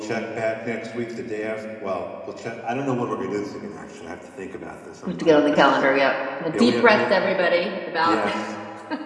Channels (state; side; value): identical; both; correlation 1.00